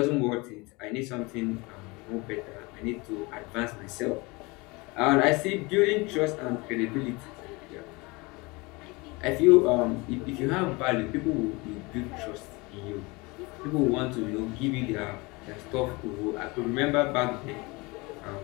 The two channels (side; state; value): right; quieter; 25.4 dB